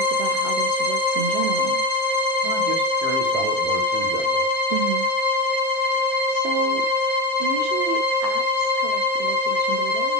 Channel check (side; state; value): both; normal; correlation 0.20